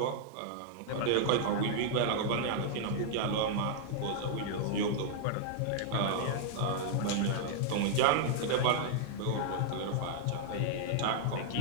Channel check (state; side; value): different; both; correlation -0.01